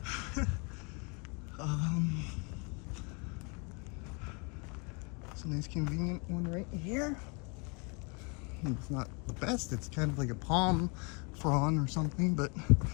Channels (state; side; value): quieter; right; 33.4 dB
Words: It's a nice convenient one right here. It's not the best, it's kind of like a palm frond or something, but